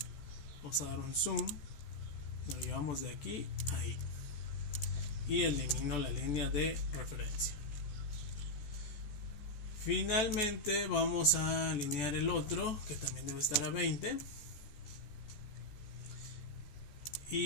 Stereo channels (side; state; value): right; late; 14 ms